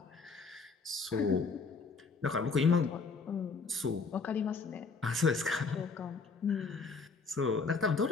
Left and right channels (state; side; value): quieter; right; 4.6 dB